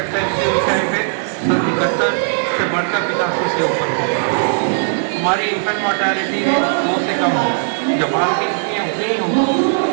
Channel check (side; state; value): left; silent; 68 dB below the other